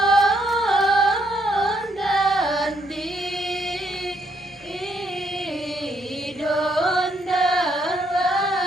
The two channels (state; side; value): normal; both; correlation 0.72